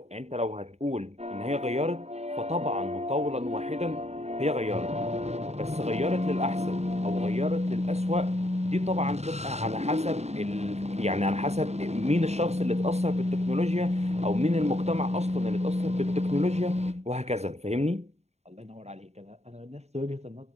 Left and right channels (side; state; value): left; late; 0.32 ms